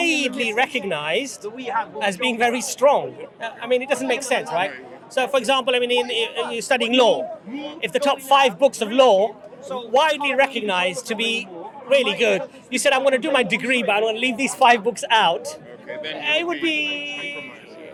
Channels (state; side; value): identical; both; correlation 1.00